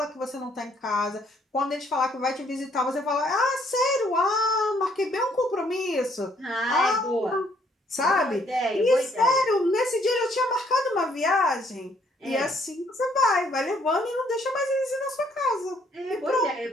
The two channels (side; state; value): both; normal; correlation 0.66